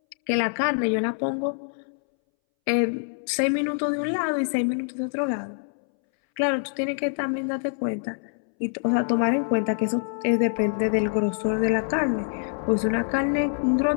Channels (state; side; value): silent; right; 62 dB below the other